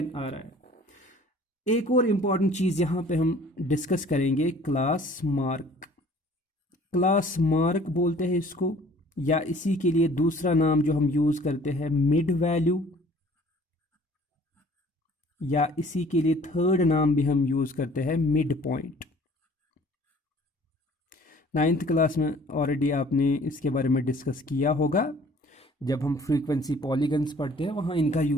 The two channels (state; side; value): normal; both; correlation 0.52